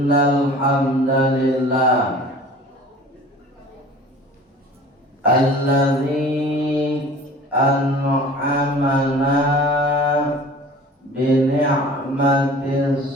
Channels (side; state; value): both; normal; correlation 0.44